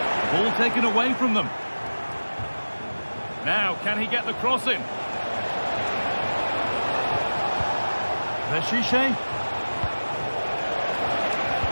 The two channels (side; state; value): both; inverted; correlation -1.00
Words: Ball taken away from them. Now, can he get the cross in? Veshiche.